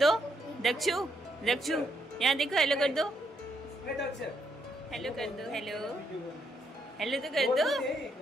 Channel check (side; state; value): both; normal; correlation 0.76